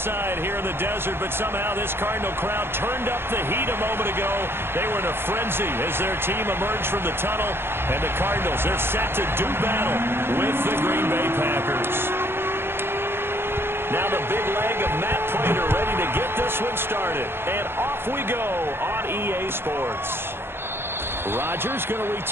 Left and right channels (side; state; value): left; late; 0.11 ms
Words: here in the desert, but somehow this Cardinal crowd turned up the heat a moment ago. They were in a frenzy as their team emerged from the tunnel, and the Cardinals, they're set to do battle with the Green Bay Packers. Now the big leg of Matt Pratt ready to get this one started, and off we go on EA Sports. Rodgers going to